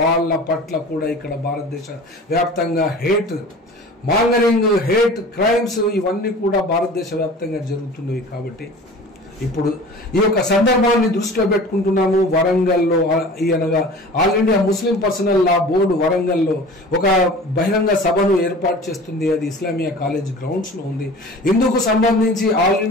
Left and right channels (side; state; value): both; normal; correlation 0.41